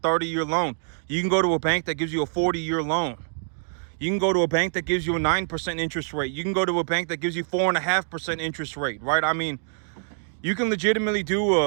loan. You can go to a bank that gives you a 40-year loan. You can go to a bank that gives you a 9% interest rate. You can go to a bank that gives you 4.5% interest rate, right? I mean, you can legitimately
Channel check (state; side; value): silent; left; digital silence